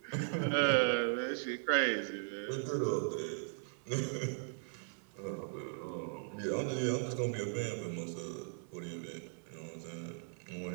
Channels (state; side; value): silent; left; 52 dB below the other